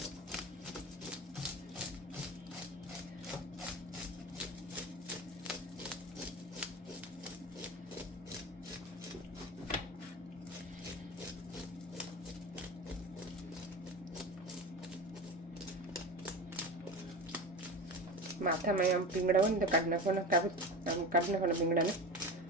માથામાં આમ પીંગડા હોય ને તો કાઢી નાખવાના, કાઢી નાખવાના પીંગડાને.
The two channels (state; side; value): normal; both; correlation 0.28